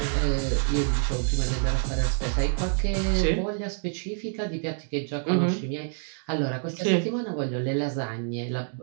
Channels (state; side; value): silent; left; 60 dB below the other